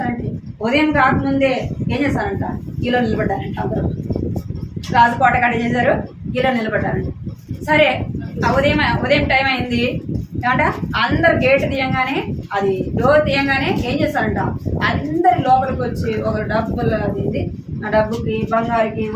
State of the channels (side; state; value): both; identical; correlation 1.00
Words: ఉదయం కాకముందే ఏం చేస్తారంట, కిలో నిలబడ్డారంట. అందరూ రాజుకోట కాడ ఏం చేశారు, కిలో నిలబడ్డారంట. సరే ఉదయం టైం అయింది ఏమంట, అందరు గేట్ తీయంగానే, అది డోర్ తీయంగానే ఏం చేస్తారంట, అందరి లోపలికి వచ్చి ఒక డబ్బులు అది ఆ డబ్బుకి, బంగారుకి,